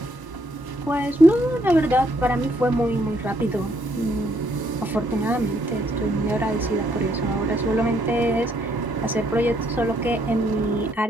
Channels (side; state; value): both; normal; correlation 0.70